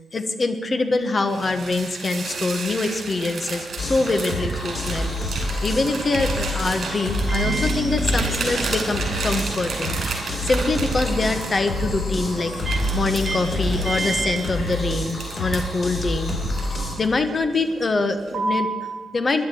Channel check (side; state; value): both; normal; correlation 0.83